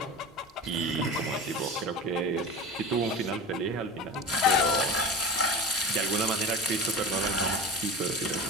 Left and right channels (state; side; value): normal; both; correlation 0.31